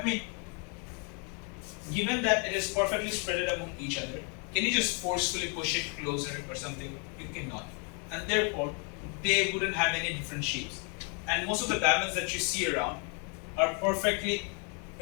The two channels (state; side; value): quieter; right; 37.8 dB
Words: mean, given that it is perfectly spread among each other, can you just forcefully push it closer or something? You cannot. And therefore, they wouldn't have any different shapes. And most of the diamonds that you see around are perfectly